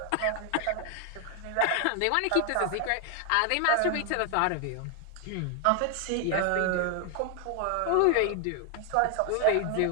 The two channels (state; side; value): different; both; correlation 0.00